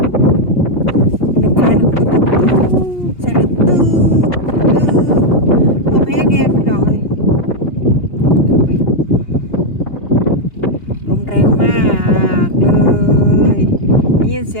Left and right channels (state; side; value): late; right; 2.7 ms